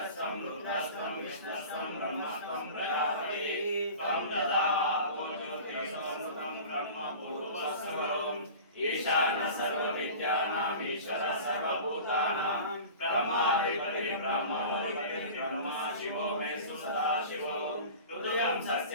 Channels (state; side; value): inverted; both; correlation -0.38